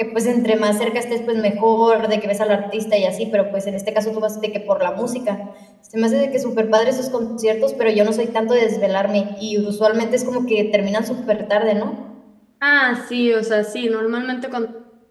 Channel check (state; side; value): identical; both; correlation 1.00